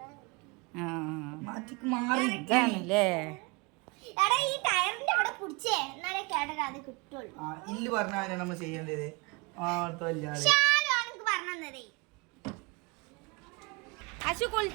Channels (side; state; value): left; quieter; 28.4 dB